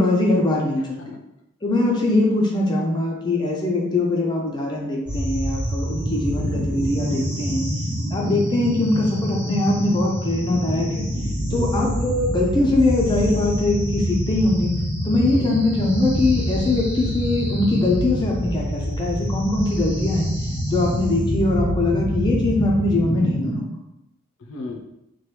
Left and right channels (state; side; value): normal; both; correlation 0.72